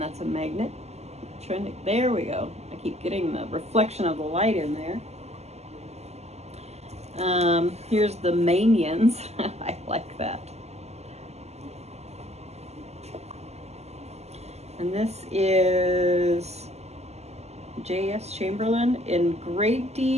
a magnet. There we go. I keep getting the reflection of the light in there. Here's the Manians. I like that. And this is J.S. Chamberlain. In great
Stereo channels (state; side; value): late; left; 0.31 ms